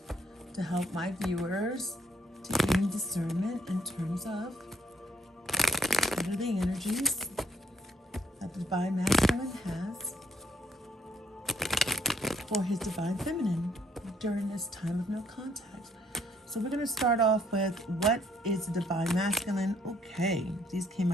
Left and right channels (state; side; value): normal; both; correlation 0.68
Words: to help my viewers to gain discernment in terms of what are the energies that the divine masculine has for his divine feminine during this time of no contact. So we're going to start off with, what is the divine masculine? Okay, these came